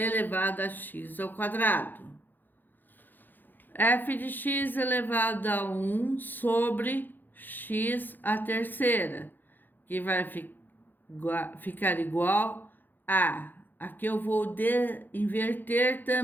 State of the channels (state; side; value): late; right; 0.089 ms